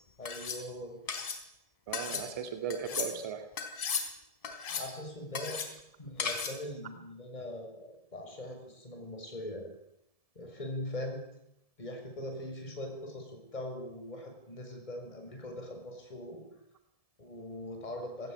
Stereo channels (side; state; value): right; late; 1.7 ms